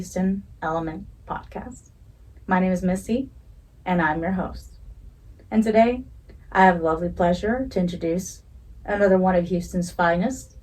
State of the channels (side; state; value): both; identical; correlation 1.00